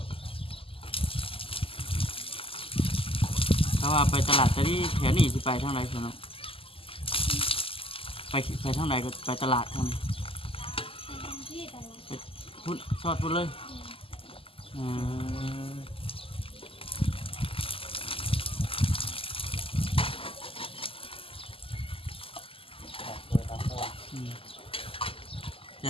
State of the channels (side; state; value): right; late; 0.26 ms